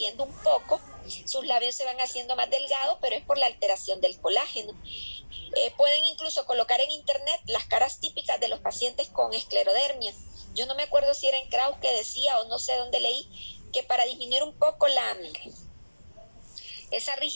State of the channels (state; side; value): inverted; both; correlation -1.00